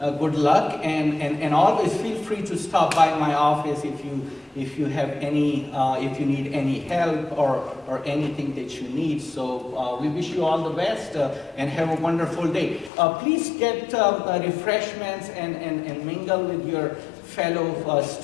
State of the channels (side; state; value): right; drops out; at 12.9 s